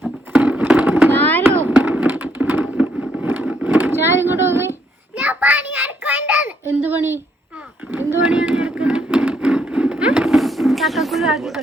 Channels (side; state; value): both; normal; correlation 0.72